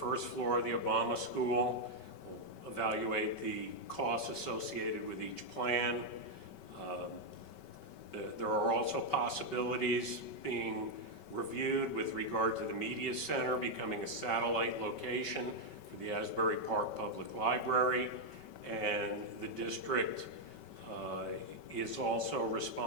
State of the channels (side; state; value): right; late; 5.2 ms